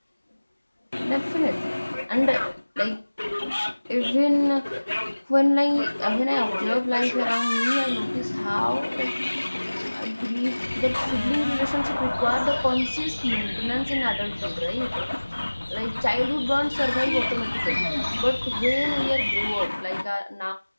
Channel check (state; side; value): inverted; both; correlation -1.00